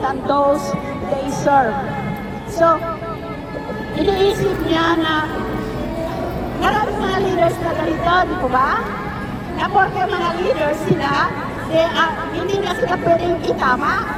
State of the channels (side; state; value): both; identical; correlation 1.00